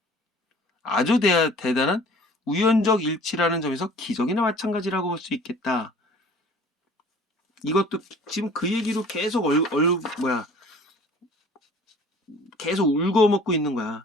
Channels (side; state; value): both; normal; correlation 0.49